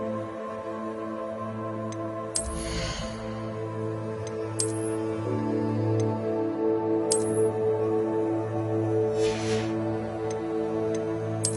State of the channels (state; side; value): identical; both; correlation 1.00